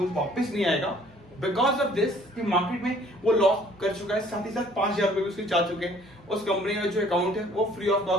वापस नहीं आएगा बिकॉज ऑफ दिस कि मार्केट में वो लॉस कर चुका है। साथ ही साथ 5,000 रुपए भी उसके जा चुके हैं। उस कंपनी का जो अकाउंट है वो फ्री ऑफ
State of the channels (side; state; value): both; normal; correlation 0.57